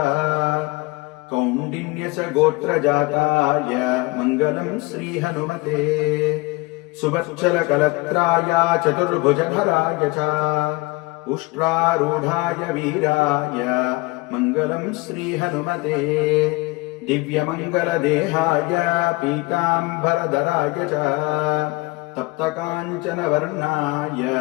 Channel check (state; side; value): quieter; right; 23.9 dB